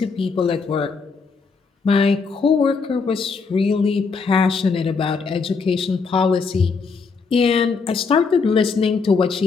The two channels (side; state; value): right; quieter; 4.9 dB